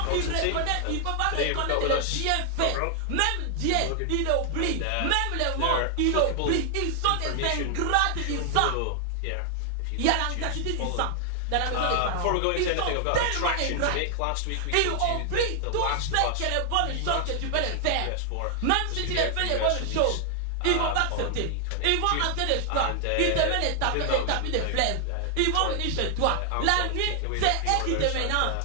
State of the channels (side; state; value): both; different; correlation 0.00